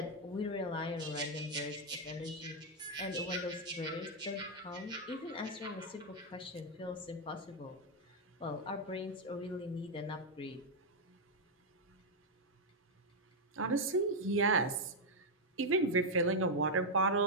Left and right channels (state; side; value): normal; both; correlation 0.00